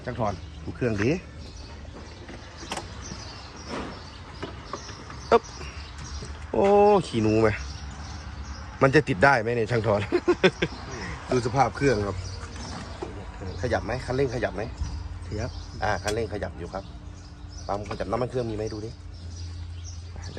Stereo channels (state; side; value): identical; both; correlation 1.00